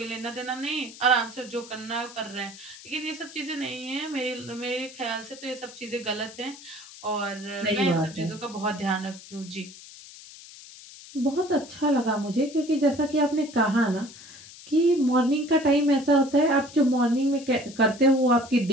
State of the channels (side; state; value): left; noise; hiss, 18 dB below the sound